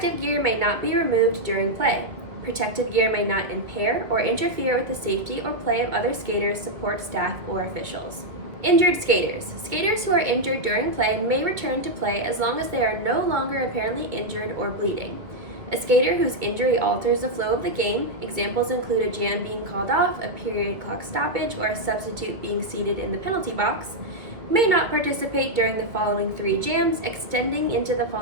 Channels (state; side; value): late; left; 1.9 ms